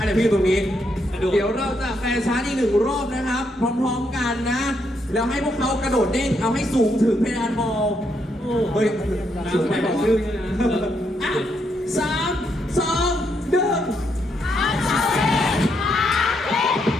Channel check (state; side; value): normal; both; correlation 0.77